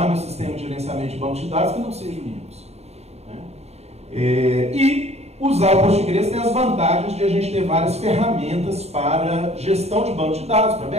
meu sistema de gerenciamento de banco de dados que não seja o Linux. Né? E usar o Postgres tem as vantagens de a gente ter várias ferramentas para gestão de banco de dados, para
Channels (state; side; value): late; left; 0.31 ms